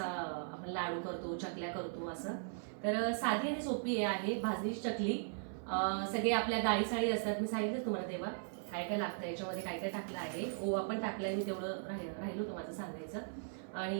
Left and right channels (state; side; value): silent; left; 52 dB below the other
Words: आपण लाडू करतो, चकल्या करतो असं. तर साधी आणि सोपी आहे भाजणीची चकली. सगळे आपल्या डाळी साळी असतात, मी सांगितलं तुम्हाला तेव्हा काय काय लागतं, याच्यामध्ये काय काय टाकलं आहे. ओवा पण टाकलाय मी, तेवढं राहिलो होतं माझं सांगायचं.